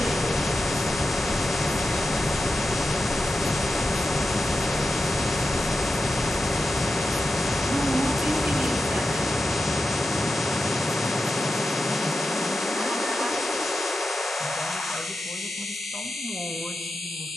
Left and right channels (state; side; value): normal; both; correlation 0.91